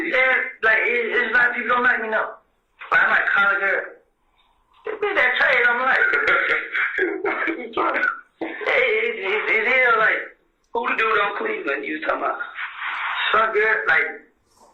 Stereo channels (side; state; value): both; identical; correlation 1.00